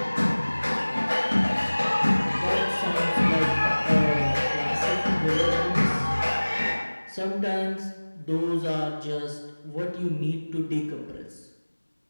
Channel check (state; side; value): inverted; both; correlation -1.00